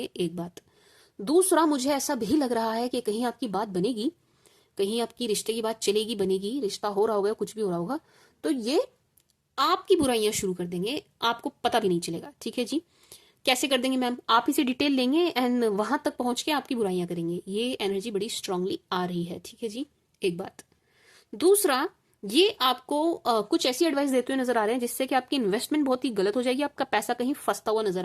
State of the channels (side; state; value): both; identical; correlation 1.00